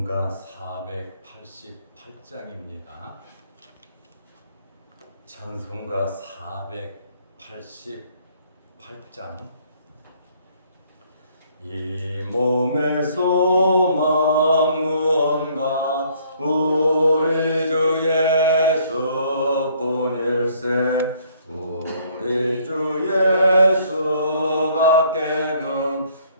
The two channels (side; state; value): both; inverted; correlation -0.63